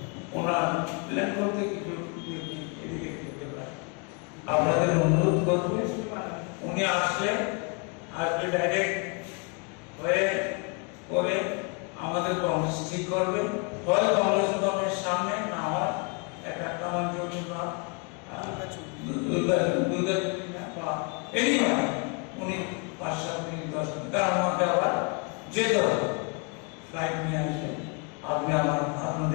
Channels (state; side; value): quieter; right; 35.0 dB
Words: ওনার প্ল্যান করতে কিছু এদিকে করতে পারে। আপনাদের অনুরোধ করবে, উনি আসলে ডাইরেক্ট হয়ে করে আমাদের কংগ্রেস ঠিক করবে, হয় কংগ্রেস গভর্নমেন্টের সামনে, না হয় একটা কামাঞ্জলি বা দুর্গা বা এনি হয় উনি 5-7 মিনিট 10 মিনিট তার মধ্যে আবার যেতে হবে, ফ্লাইট নিয়ে আসবে। আপনি